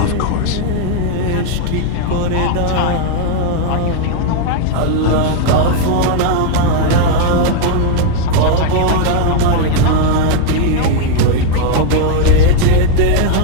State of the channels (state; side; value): different; both; correlation 0.00